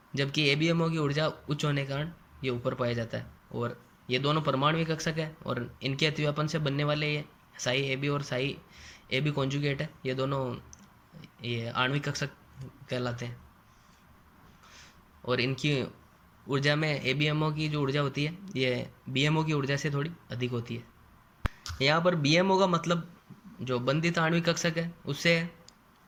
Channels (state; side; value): identical; both; correlation 1.00